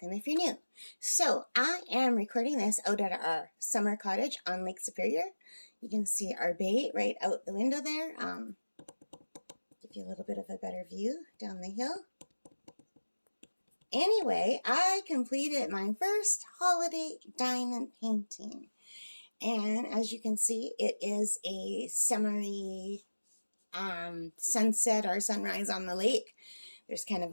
if you're new. So I am recording this out at our summer cottage on Lake Superior. You can see our bay right out the window there. Give you a little bit of a better view down the hill. Anyway, I completed my first holiday diamond painting. And as you can see, it is a summery sunset or sunrise on the lake. There's kind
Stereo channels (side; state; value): both; inverted; correlation -1.00